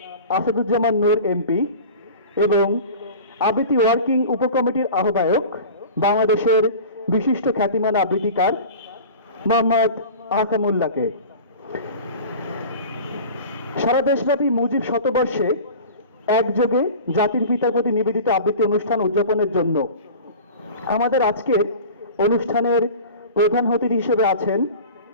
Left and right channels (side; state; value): both; inverted; correlation -0.37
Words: আসাদুজ্জামান নূর এমপি এবং আবৃত্তি ওয়ার্কিং উপকমিটির আহ্বায়ক বাংলাদেশের বিশিষ্ট খ্যাতিমান আবৃত্তিকার মোহাম্মদ আহকামুল্লাহকে। সারা দেশব্যাপী মুজিব শতবর্ষে একযোগে জাতির পিতার প্রতি নিবেদিত আবৃত্তি অনুষ্ঠান উদযাপনের জন্য আমাদের আজকের অনুষ্ঠানের প্রধান অতিথি হিসেবে আছেন